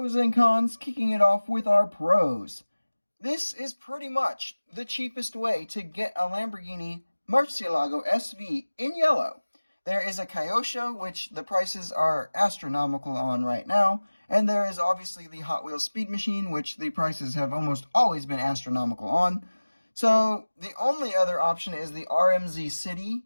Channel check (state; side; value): inverted; both; correlation -1.00